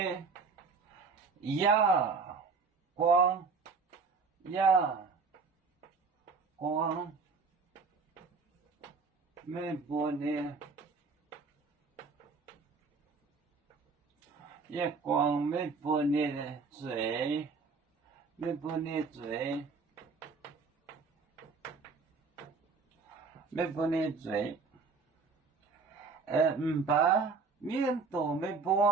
月光，没不呢。月光没不你的嘴，没不你嘴，没不你嘴，把面都没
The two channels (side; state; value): left; quieter; 4.6 dB